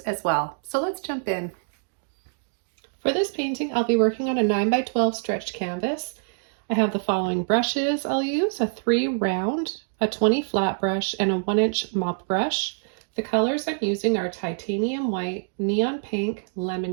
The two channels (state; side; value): silent; left; digital silence